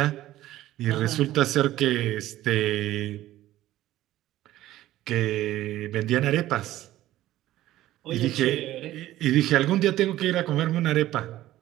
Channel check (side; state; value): left; quieter; 14.7 dB